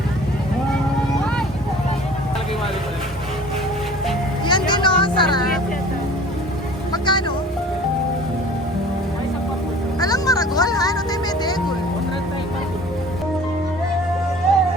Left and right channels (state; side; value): normal; both; correlation 0.46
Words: Yan din o, sarap. Magkano? Alang maragol ha? Ano tayo may degol?